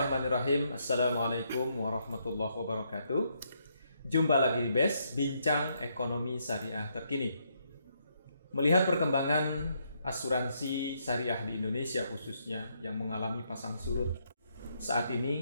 Assalamualaikum warahmatullahi wabarakatuh. Jumpa lagi di BES, Bincang Ekonomi Syariah Terkini. Melihat perkembangan asuransi syariah di Indonesia khususnya yang mengalami pasang surut saat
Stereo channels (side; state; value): both; inverted; correlation -0.75